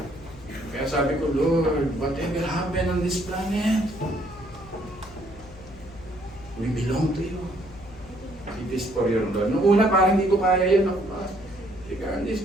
Kaya sabi ko, Lord, whatever happened on this planet, we belong to you. It is for your Lord. Noong una, parang hindi ko kaya yun. Ako pa, regardless,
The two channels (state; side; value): noise; left; hum, 19 dB below the sound